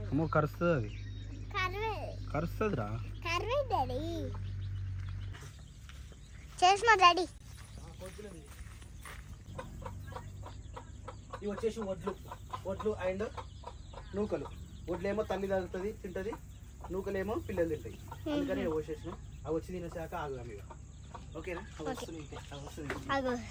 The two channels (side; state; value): both; identical; correlation 1.00